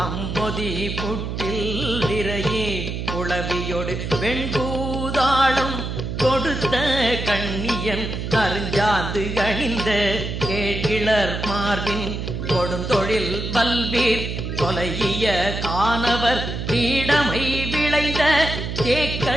புட்டில் விரையே குளவியோடு வெண்பூதாளம் கொடுத்த கண்ணியன் அருஞ்சாந்து அணிந்த கேழ்கிளர் மார்பின் கொடுந்தொழில் பல்வீர் கொலைய காணவர் பீடமை விளைந்த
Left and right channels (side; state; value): right; noise; hum, 4 dB below the sound